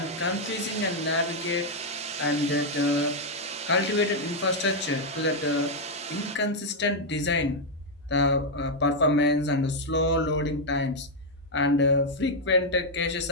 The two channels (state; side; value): normal; both; correlation -0.01